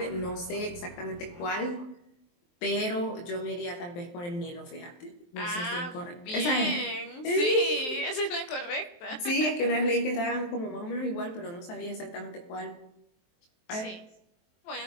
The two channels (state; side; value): late; right; 23 ms